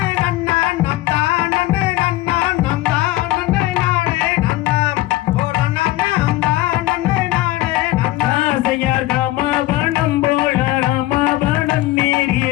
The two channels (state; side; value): quieter; right; 17.0 dB